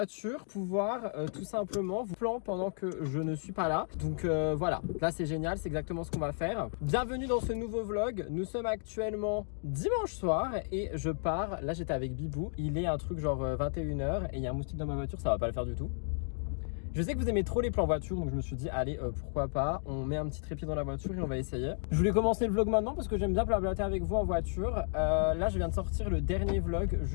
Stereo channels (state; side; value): silent; right; digital silence